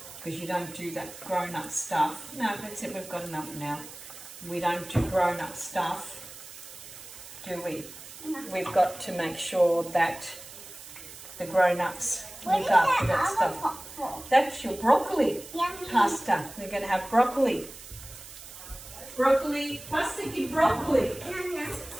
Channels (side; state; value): right; noise; hiss, 15 dB below the sound